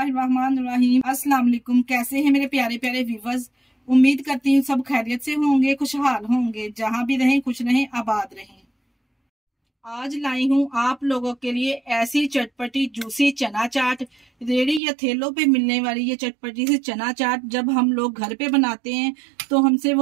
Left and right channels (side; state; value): left; drops out; at 14.8 s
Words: अस्सलाम वालेकुम। कैसे हैं मेरे प्यारे प्यारे व्यूवर्स। उम्मीद करती हूँ सब खैरियत से होंगे, खुशहाल होंगे, जहां भी रहें खुश रहें, आबाद रहें। आज लाई हूँ आप लोगों के लिए ऐसी चटपटी जूसी चना चाट। रेड़ी या ठेलों पे मिलने वाली ये चटपटी सी चना चाट जब हम लोग घर पे बनाते हैं तो हमसे